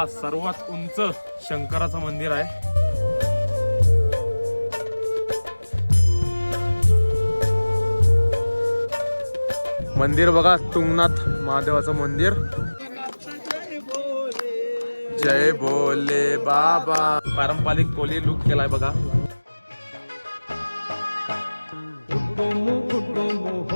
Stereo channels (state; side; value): inverted; both; correlation -1.00